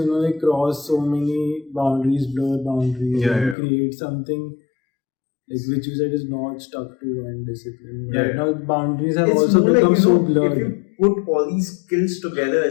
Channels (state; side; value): drops out; right; at 3.6 s